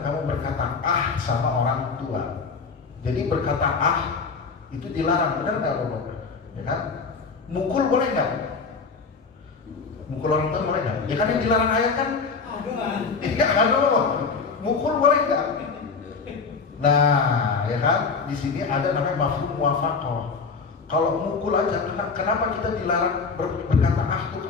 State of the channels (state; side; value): quieter; right; 4.9 dB